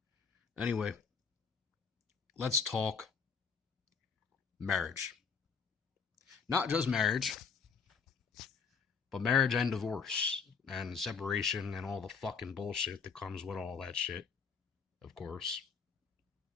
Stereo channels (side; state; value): right; quieter; 5.8 dB